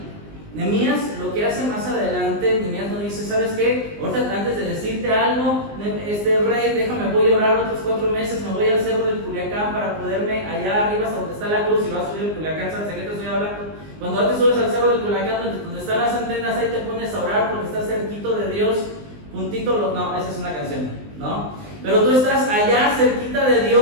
Nehemías lo que hace más adelante, Nehemías no dice, ¿sabes qué? Ahorita antes de decirte algo, rey, déjame, voy a orar otros 4 meses, me voy al cerro del Culiacán para poderme allá arriba hasta donde está la cruz y lo vas a subir al Culiacán, ¿sabes de qué te estoy hablando? Cuando antes subes al cerro del Culiacán, donde están las antenas, ahí te pones a orar porque estás cerquito de Dios, puntito, no, esa es una canción, ¿no? Pero tú estás allá cerquita de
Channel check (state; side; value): late; left; 19 ms